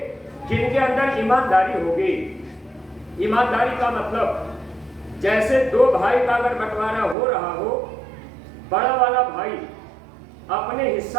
जिनके अंदर ईमानदारी होगी। ईमानदारी का मतलब, जैसे 2 भाई का अगर बंटवारा हो रहा हो, बड़ा वाला भाई अपने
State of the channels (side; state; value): left; drops out; at 7.2 s